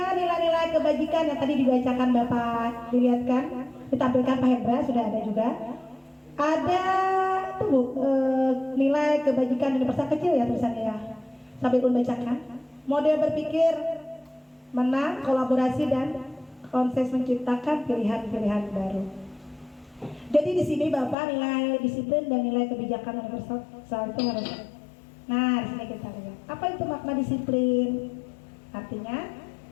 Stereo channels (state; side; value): drops out; right; at 21.2 s